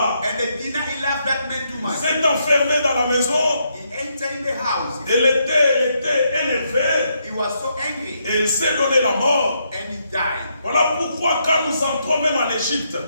And the Dina, he loved that man too il much. s'est enfermé dans la maison. He entered in the house. Elle était énervée He was so angry, et il s'est donné la mort. and he died. Voilà pourquoi quand nous entrons même en Égypte,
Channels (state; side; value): inverted; both; correlation -0.77